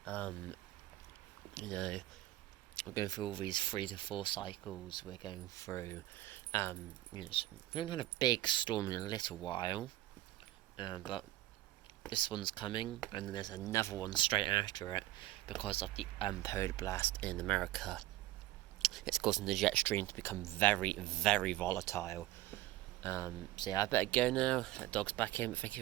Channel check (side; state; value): left; quieter; 15.9 dB